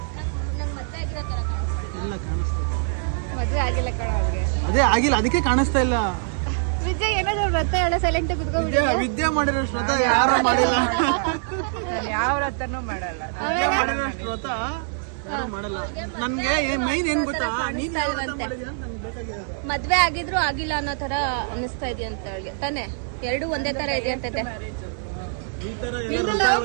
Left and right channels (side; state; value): left; silent; digital silence